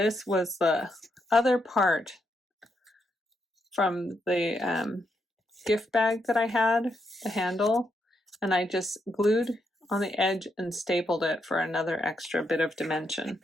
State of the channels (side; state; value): both; normal; correlation 0.80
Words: was the other part from the gift bag that I had, the handle, and I just glued on the edge and stapled it for another extra bit of dimension.